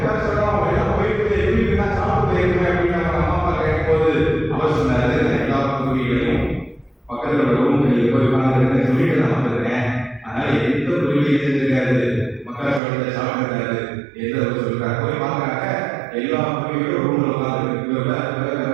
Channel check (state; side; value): drops out; left; at 12.8 s